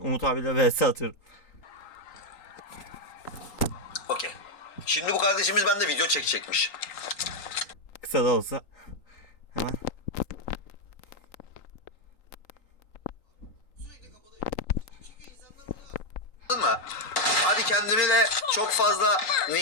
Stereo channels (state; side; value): late; right; 3.8 ms